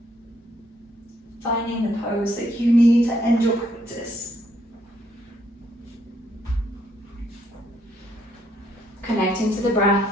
Finding the pose that you need to end your practice. Connecting to the breath.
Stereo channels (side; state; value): both; normal; correlation 0.71